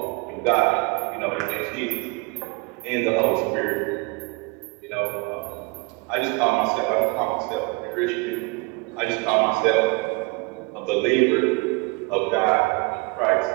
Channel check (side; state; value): left; quieter; 28.3 dB